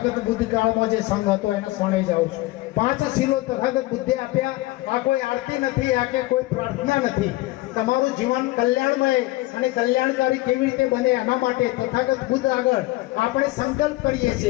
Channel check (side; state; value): right; quieter; 19.3 dB